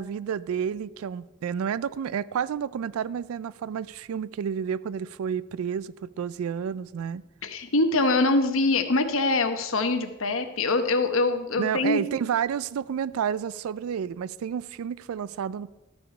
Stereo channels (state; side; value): normal; both; correlation -0.02